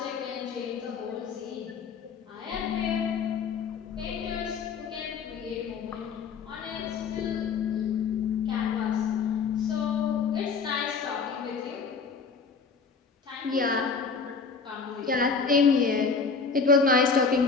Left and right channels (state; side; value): quieter; right; 5.2 dB